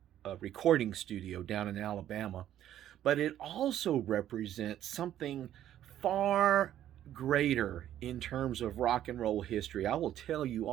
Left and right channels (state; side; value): quieter; left; 11.7 dB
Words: recording studio down in Alabama, but it also represents something far greater in terms of rock and roll history. I will tell you